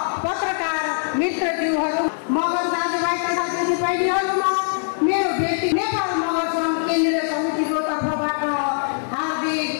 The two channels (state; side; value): silent; right; digital silence